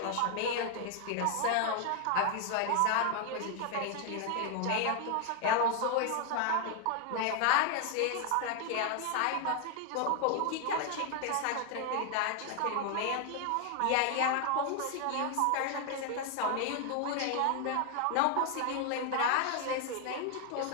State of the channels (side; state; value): both; different; correlation 0.00